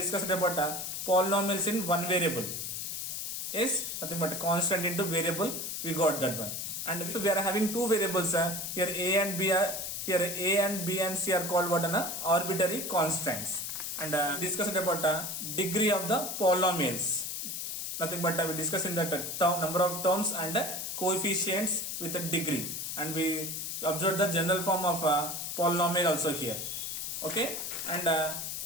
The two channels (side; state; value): left; noise; hiss, 4 dB below the sound